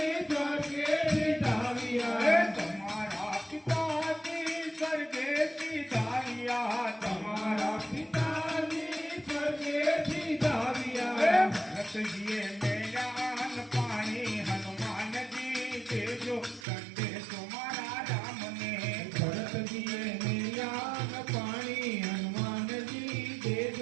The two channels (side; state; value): left; drops out; at 16.7 s